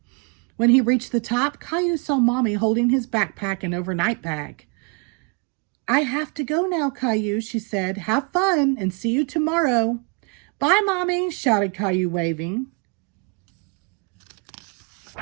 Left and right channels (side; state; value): left; quieter; 33.9 dB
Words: When he reached the top, Caillou saw Mommy holding his backpack and overnight bag. "I have to go now, Caillou," she said. "Have fun and see you tomorrow." "Bye, Mommy," shouted Caillou, waving.